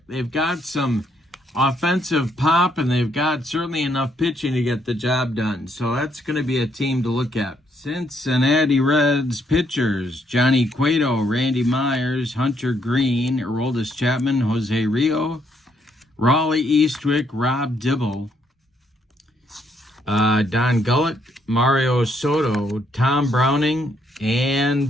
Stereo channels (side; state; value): both; normal; correlation 0.73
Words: They've got some offensive pop, and they've got certainly enough pitching to get the job done. So that's going to be a team to look at. Cincinnati Reds pitchers: Johnny Cueto, Randy Myers, Hunter Green, Aroldis Chapman, Jose Rio, Raleigh Eastwick, Rob Dibble, Don Gullett, Mario Soto, Tom Browning,